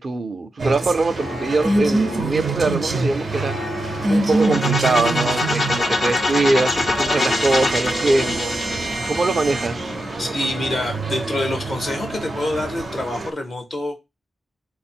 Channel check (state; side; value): normal; both; correlation 0.89